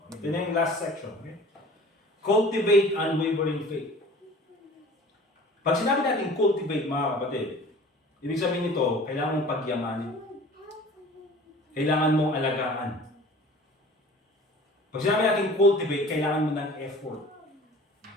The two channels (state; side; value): normal; both; correlation 0.45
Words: Ito na yung last section. Okay? Cultivate unwavering faith. Pag sinabi natin cultivate, mga kapatid, ibig sabihin nito, kailangan mong pagyamanin. Kailangan mong alagaan. Pag sinabi natin cultivate, kailangan mo ng effort.